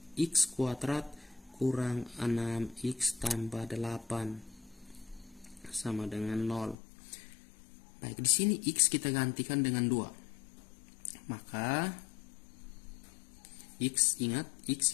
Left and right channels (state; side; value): drops out; right; at 6.8 s